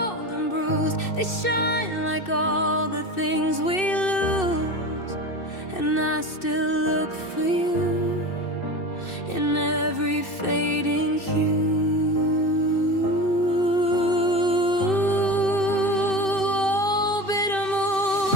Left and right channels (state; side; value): late; right; 2.6 ms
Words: and bruised. They shine like all the things we lose, and I still look for you in every fading hue.